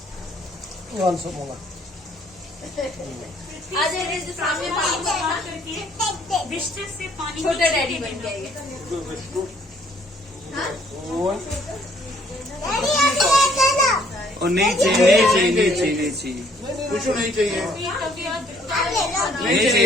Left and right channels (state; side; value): normal; both; correlation 0.63